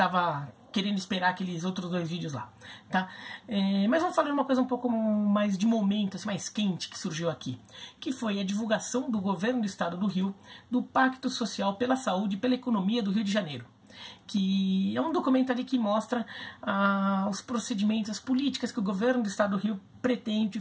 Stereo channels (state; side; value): identical; both; correlation 1.00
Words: querendo esperar aqueles outros 2 vídeos lá, tá? Mas vamos falar de uma coisa um pouco mais de momento, assim, mais quente que surgiu aqui, que foi a divulgação do governo do estado do Rio do Pacto Social pela Saúde e pela Economia do Rio de Janeiro, que é um documento ali que mostra os procedimentos, as políticas que o governo do estado do Rio pretende